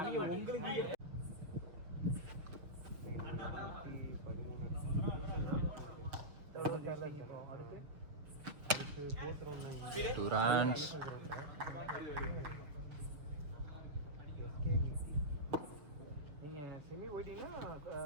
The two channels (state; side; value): late; left; 6.9 ms